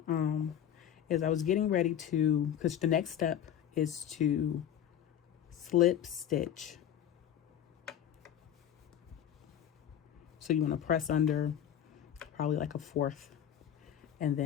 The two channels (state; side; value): quieter; right; 10.0 dB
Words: is I was getting ready to, because the next step is to slip stitch. So you want to press under probably like a fourth, and